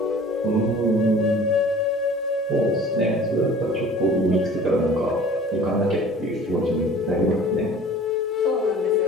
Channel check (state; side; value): normal; both; correlation 0.46